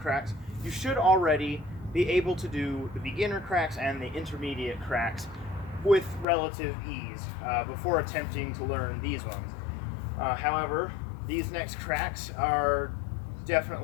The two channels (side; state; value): right; drops out; at 6.2 s